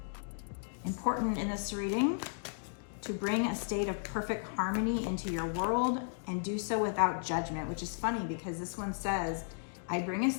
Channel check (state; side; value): silent; right; digital silence